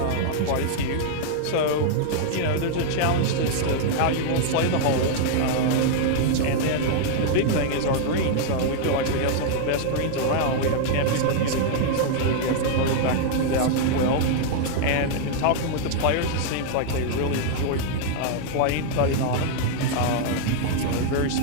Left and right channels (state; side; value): different; both; correlation 0.00